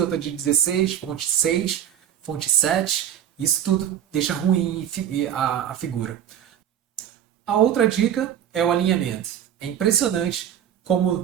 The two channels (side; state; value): left; quieter; 10.1 dB